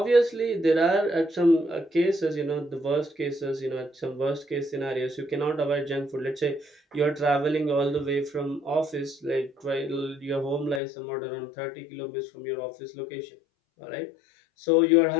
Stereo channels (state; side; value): drops out; right; at 10.8 s